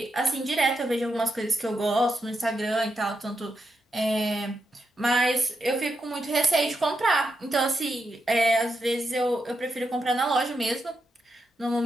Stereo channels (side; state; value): both; normal; correlation 0.84